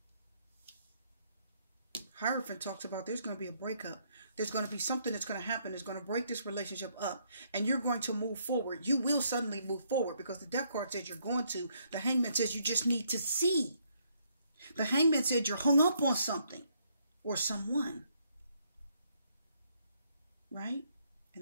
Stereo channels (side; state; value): both; inverted; correlation -0.71